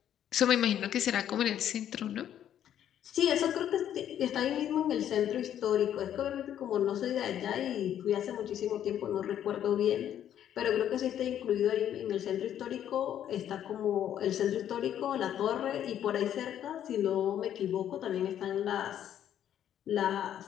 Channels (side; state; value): right; quieter; 10.5 dB